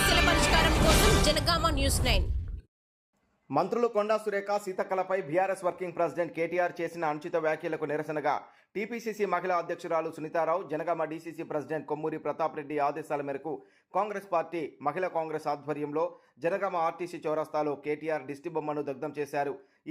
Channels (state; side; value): identical; both; correlation 1.00